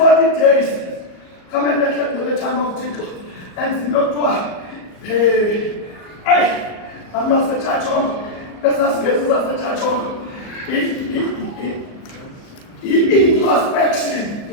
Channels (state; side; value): late; right; 38 ms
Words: days, come and let the time of Jesus. And not what? Hey, I'm not a church on. That's not a church on. Introspection,